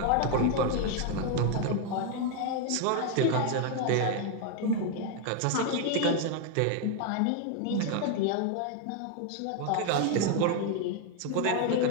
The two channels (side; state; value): both; different; correlation 0.01